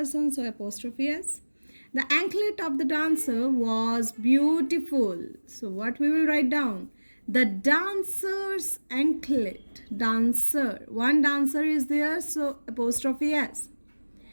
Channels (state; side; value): inverted; both; correlation -1.00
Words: so apostrophe S. The anklet of the dancer was beautiful. So what we will write down? The dancer's anklet. Dancer. One dancer is there, so apostrophe S.